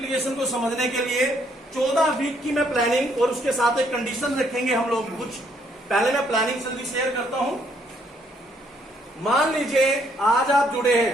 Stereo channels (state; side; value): normal; both; correlation 0.69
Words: को समझने के लिए 14 वीक की मैं प्लानिंग और उसके साथ एक कंडीशन रखेंगे हम लोग कुछ। पहले मैं प्लानिंग जल्दी शेयर करता हूं। मान लीजिए आज आप जुड़े